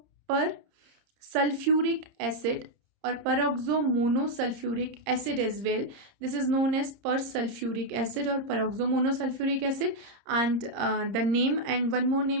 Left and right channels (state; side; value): late; left; 30 ms